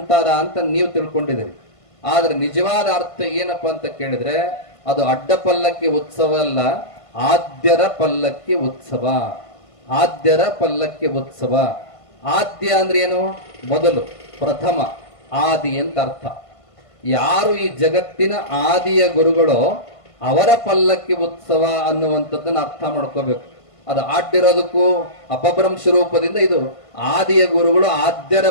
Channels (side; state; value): right; late; 1.5 ms